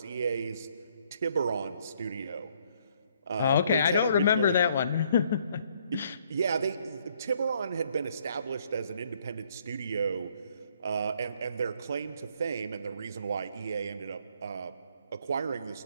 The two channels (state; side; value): inverted; both; correlation -0.67